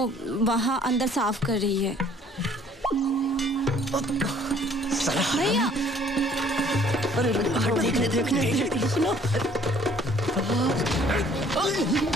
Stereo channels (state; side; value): normal; both; correlation 0.57